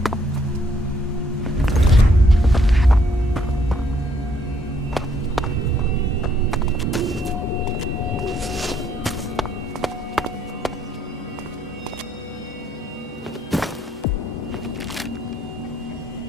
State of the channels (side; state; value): both; normal; correlation 0.69